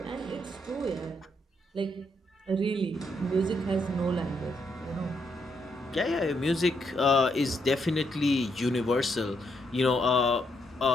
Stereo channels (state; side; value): normal; both; correlation 0.76